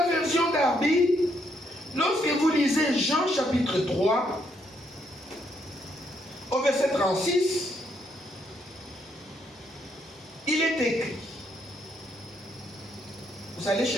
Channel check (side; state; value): both; normal; correlation 0.74